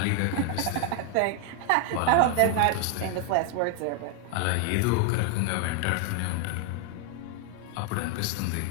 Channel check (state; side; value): different; both; correlation 0.00